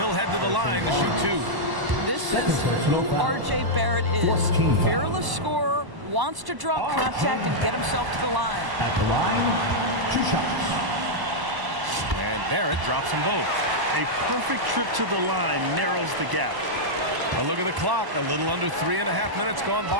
head to the line to shoot 2. This is who R.J. Barrett is. Fearless scorer, wants to draw contact and get himself to the line. At the line, 2 shots. And Barrett drops them both. A perfect trip to the line narrows the gap. A look at the clock. A little under 3.5 minutes gone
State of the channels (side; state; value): left; late; 1.0 ms